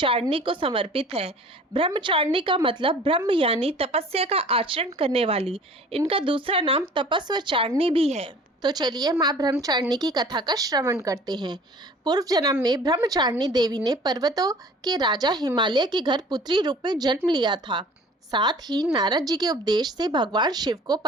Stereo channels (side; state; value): both; normal; correlation 0.47